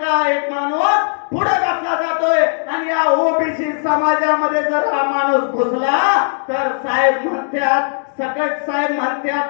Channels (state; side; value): silent; right; digital silence